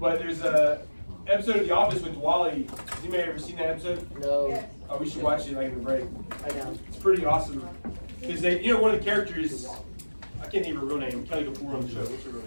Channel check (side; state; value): both; inverted; correlation -1.00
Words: there's a episode of The Office with Wally. Has anybody ever seen that episode? No, Oh, we should watch it like in the break. I know. It's pretty awesome. Because they, you know, one of the characters, I can't think of her real name, Kelly Kapoor on the show. What's her real